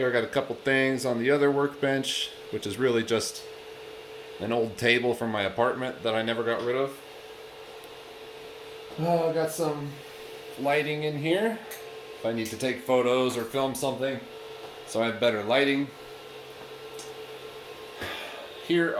I got a couple things on the other workbench, which is really just an old table from my apartment that I never got rid of. I got some lighting in here if I need to take photos or film something, so I have better lighting. Here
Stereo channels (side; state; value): both; identical; correlation 1.00